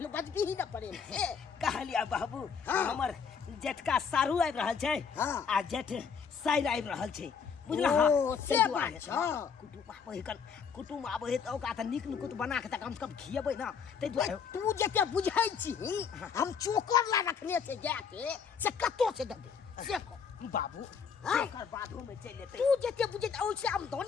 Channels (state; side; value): quieter; right; 6.4 dB